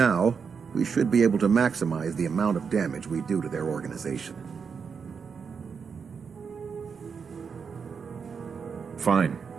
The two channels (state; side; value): quieter; left; 6.0 dB